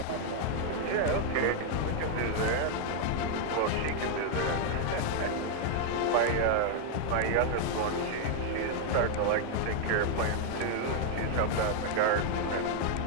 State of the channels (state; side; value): different; both; correlation 0.00